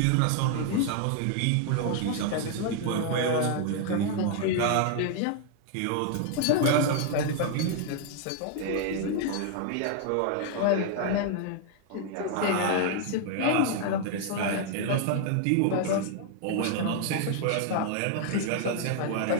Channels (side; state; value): both; different; correlation 0.00